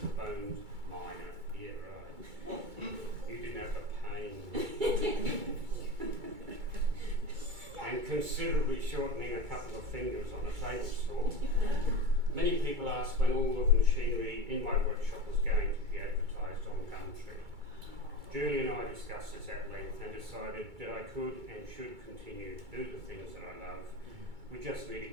bones, yeah, right. You didn't have the pain. And considerably shortening a couple of fingers on a table saw. Many people asked when all of the machinery in my workshop was going to be advertised on Gumtree. Julie and I discussed this at length and decided that I could and should continue to do the things that I love. We just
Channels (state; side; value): late; left; 2.3 ms